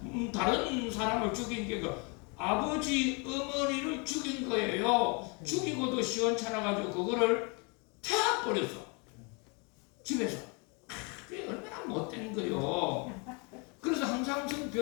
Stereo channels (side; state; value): right; quieter; 32.9 dB